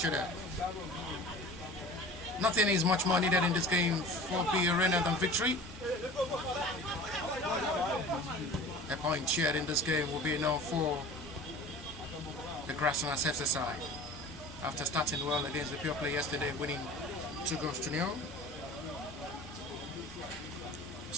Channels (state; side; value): normal; both; correlation 0.40